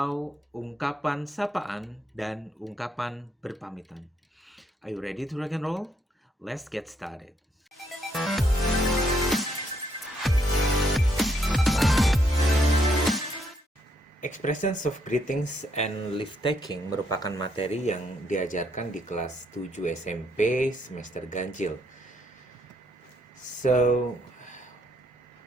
ungkapan sapaan dan ungkapan berpamitan. Are you ready to rock and roll? Let's get started. Expressions of greetings and leave taking merupakan materi yang diajarkan di kelas 7 SMP semester ganjil. So,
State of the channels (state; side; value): normal; both; correlation 0.72